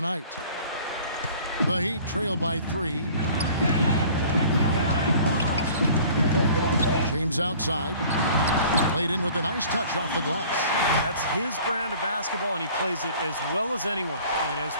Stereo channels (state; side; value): inverted; both; correlation -0.49